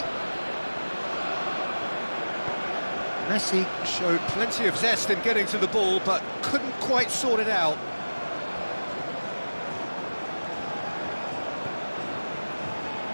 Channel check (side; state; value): both; inverted; correlation -1.00